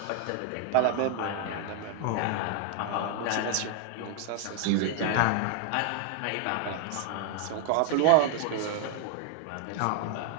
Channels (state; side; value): different; both; correlation 0.00